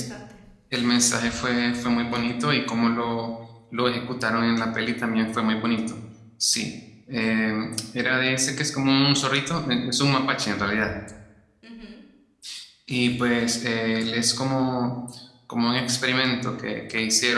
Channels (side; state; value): both; identical; correlation 1.00